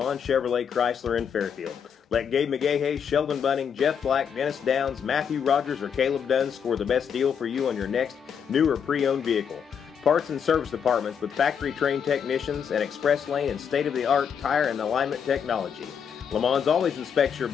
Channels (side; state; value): right; quieter; 7.4 dB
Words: Chevrolet Chrysler in Fairfield. Let Gabe McGahey, Sheldon Bunning, Jeff Black, Dennis Downs, Matthew Rogers, or Caleb Dunn score the best deal for you on your next new or pre-owned vehicle. Parts and service departments with factory-trained technicians and express lane and state-of-the-art tire and alignment technology. Lamont always inspects your